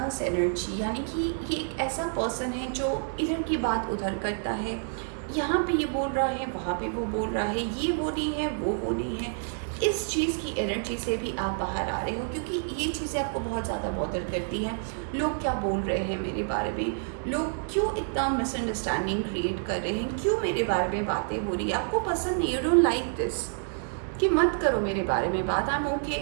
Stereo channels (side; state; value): left; silent; 59 dB below the other